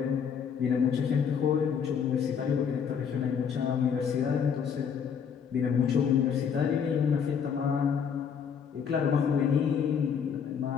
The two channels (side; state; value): right; quieter; 7.1 dB